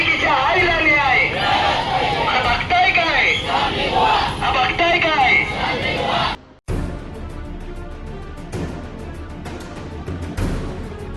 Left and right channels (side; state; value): both; identical; correlation 1.00